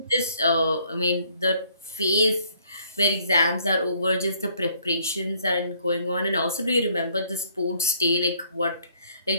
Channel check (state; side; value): inverted; both; correlation -0.64